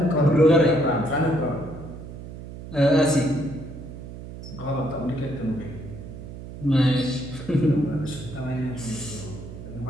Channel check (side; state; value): right; noise; hum, 12 dB below the sound